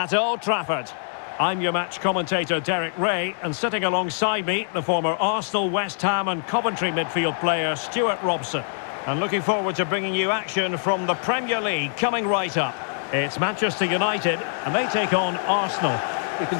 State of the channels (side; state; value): right; silent; digital silence